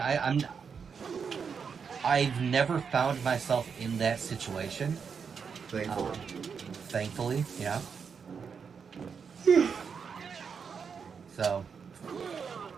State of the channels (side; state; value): left; quieter; 6.2 dB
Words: I've never found myself in that situation. Thankfully. Yeah. So,